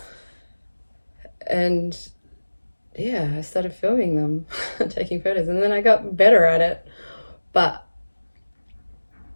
And yeah, I started filming them, taking photos, and then I got better at it. But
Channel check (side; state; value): both; inverted; correlation -1.00